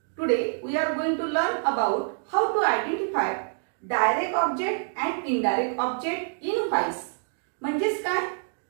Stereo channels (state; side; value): silent; left; digital silence